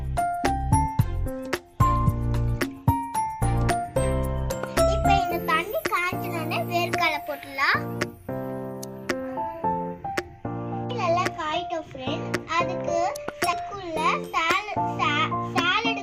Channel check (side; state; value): both; identical; correlation 1.00